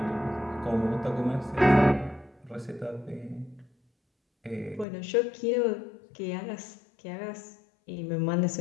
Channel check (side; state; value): right; drops out; at 4.9 s